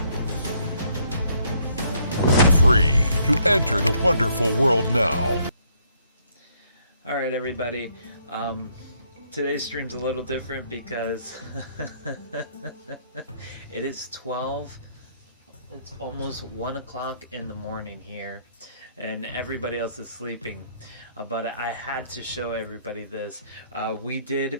Free to enter the wonderful world now. All right, everybody. Today's stream's a little different because it is 12. It's almost 1 o'clock in the morning here, and everybody else is sleeping. But I had to show everybody this. We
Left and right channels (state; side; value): inverted; both; correlation -0.68